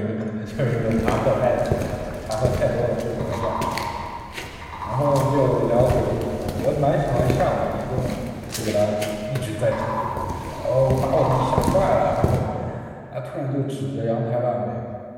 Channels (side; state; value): both; identical; correlation 1.00